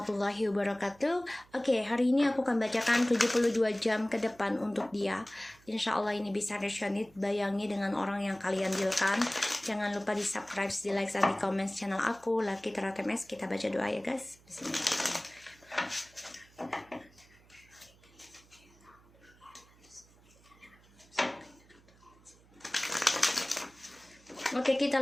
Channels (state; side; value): noise; right; hum, 28 dB below the sound